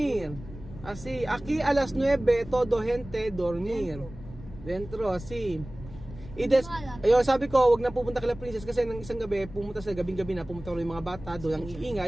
Así, aquí a las 9 todo gente dormir. Dentro así. Ayun, sabi ko, wag na pupunta kay Princess kasi ng isang gabi, pumunta yung mga bata, doon ang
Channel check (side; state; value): left; noise; rumble, 15 dB below the sound